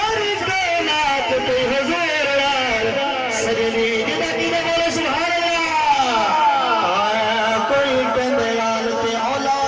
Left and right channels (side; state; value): both; identical; correlation 1.00